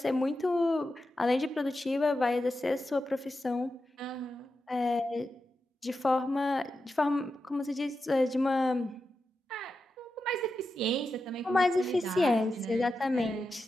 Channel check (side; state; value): both; normal; correlation 0.89